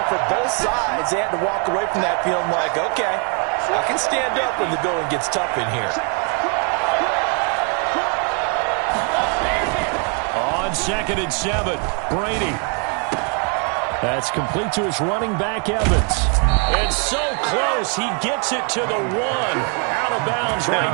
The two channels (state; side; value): quieter; left; 38.8 dB